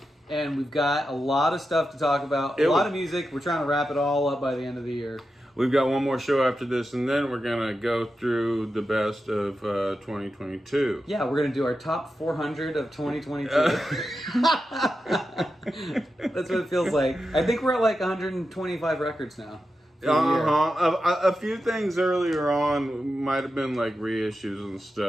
And we've got a lot of stuff to talk about. A lot of music. We're trying to wrap it all up by the end of the year. We've got one more show after this, and then we're going to go through the best of 2022. Yeah, we're going to do our top 400 of 2022. That's what it feels like. I think we're at like 125 records now. A few things earlier on might have been like reissues and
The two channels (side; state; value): both; normal; correlation 0.90